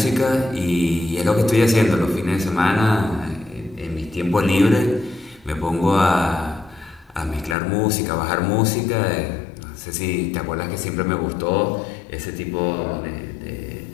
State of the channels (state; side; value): drops out; right; at 7.6 s